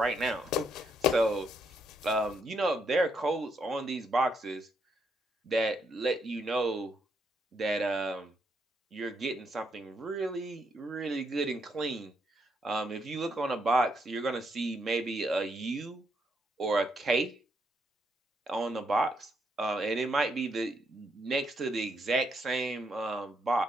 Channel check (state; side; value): normal; both; correlation 0.76